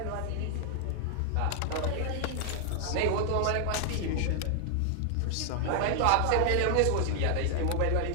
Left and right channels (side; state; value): both; different; correlation 0.00